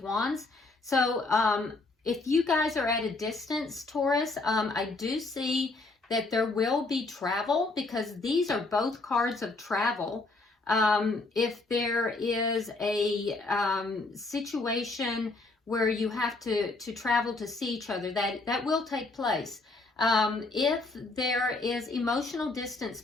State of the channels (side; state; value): right; quieter; 3.4 dB